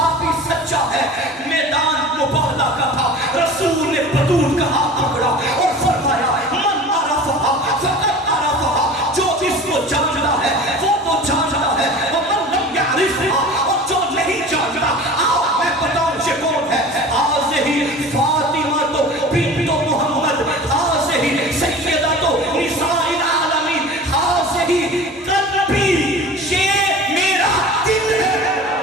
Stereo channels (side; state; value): both; normal; correlation 0.39